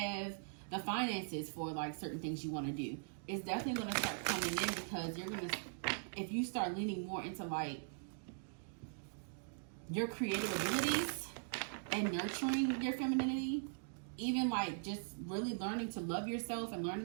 the finances for like certain things you want to do, it's definitely going to start coming in, because if you start leaning more into like your creative abilities and nurturing your femininity, even like just really learning to love yourself and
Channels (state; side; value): silent; left; digital silence